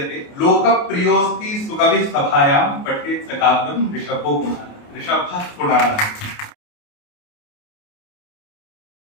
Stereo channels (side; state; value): right; late; 28 ms